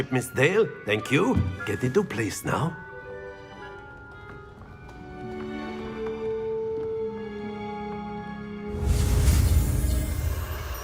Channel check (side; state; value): both; identical; correlation 1.00